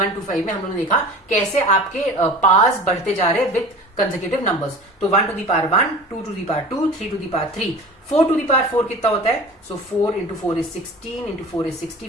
में हम लोगों ने देखा कैसे आपके पास बढ़ते जा रहे हैं विथ कंसेक्यूटिव नंबर्स। तो 1 to the power 1, 2 to the power 2, 3 to the power 3, 4 to the power 4 कितना होता है? So 4 into 4 is 16, into 4 is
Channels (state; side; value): normal; both; correlation 0.38